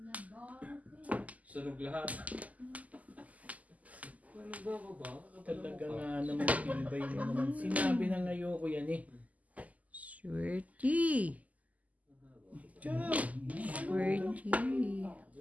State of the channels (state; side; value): late; left; 0.075 ms